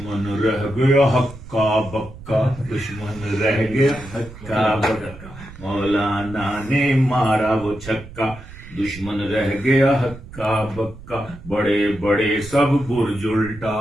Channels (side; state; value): right; noise; rumble, 16 dB below the sound